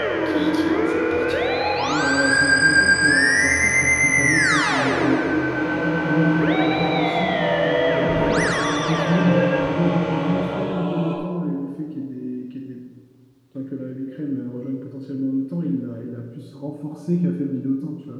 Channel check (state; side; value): identical; both; correlation 1.00